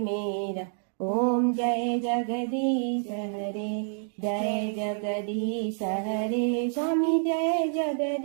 ओम जय जगदीश हरे। जय जगदीश हरे स्वामी, जय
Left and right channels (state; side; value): silent; left; 59 dB below the other